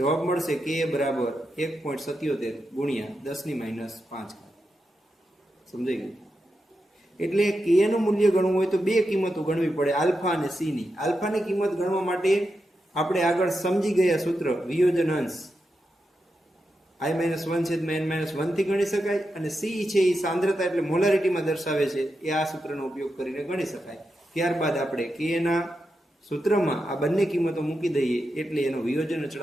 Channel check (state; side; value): normal; both; correlation 0.87